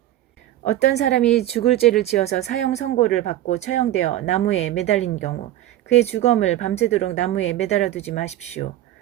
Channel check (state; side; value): quieter; left; 13.6 dB